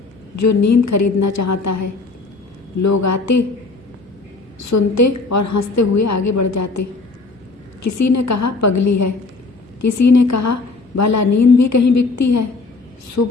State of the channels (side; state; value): right; quieter; 3.8 dB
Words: जो नींद खरीदना चाहता है। लोग आते, सुनते और हंसते हुए आगे बढ़ जाते। किसी ने कहा पगली है, किसी ने कहा भला नींद भी कहीं बिकती है।